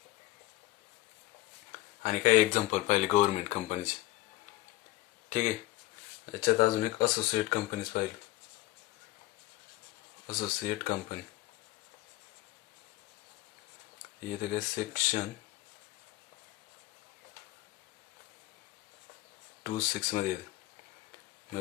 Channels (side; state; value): right; quieter; 17.3 dB